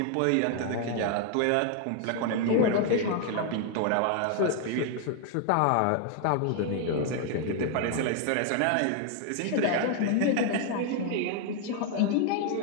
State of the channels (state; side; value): different; both; correlation 0.00